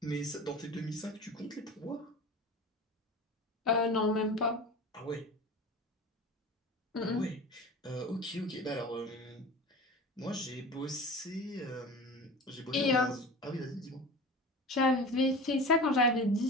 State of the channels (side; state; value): both; normal; correlation 0.34